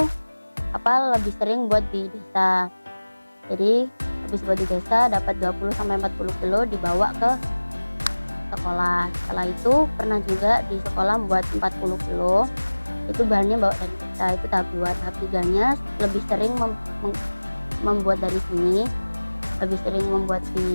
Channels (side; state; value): both; inverted; correlation -1.00